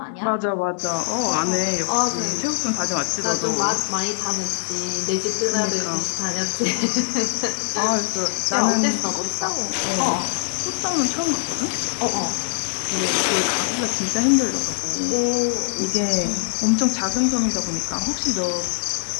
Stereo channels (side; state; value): right; silent; digital silence